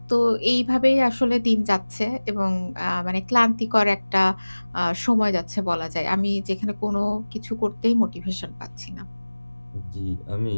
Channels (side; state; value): both; inverted; correlation -1.00